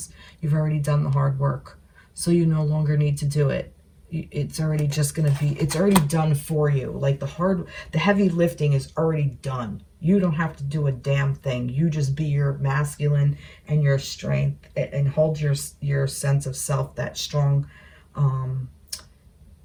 You've already done the hard work. So you no longer need to do it. It's already just going to be, it's already done for you. Like the heavy lifting is already done. You don't have to do a damn thing. You just be your masculine and your strength, and hold your sense of self, that strong,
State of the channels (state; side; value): identical; both; correlation 1.00